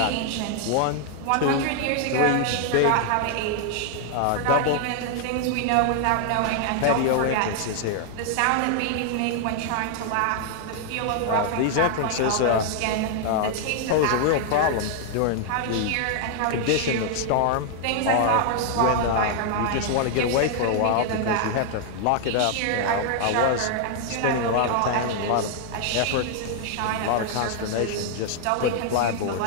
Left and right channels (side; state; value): both; different; correlation 0.00